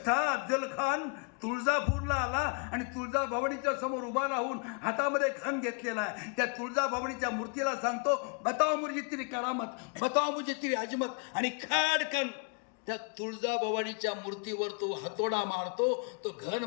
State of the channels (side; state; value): right; quieter; 38.2 dB